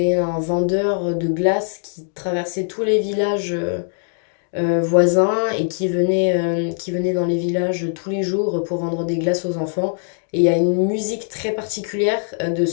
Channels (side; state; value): right; silent; digital silence